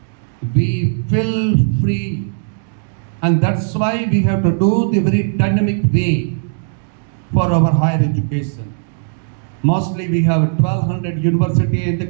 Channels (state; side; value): silent; left; digital silence